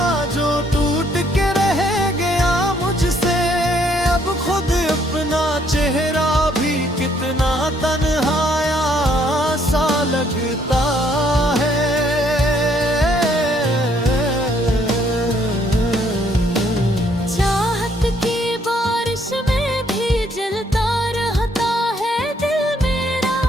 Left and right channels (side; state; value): both; normal; correlation 0.67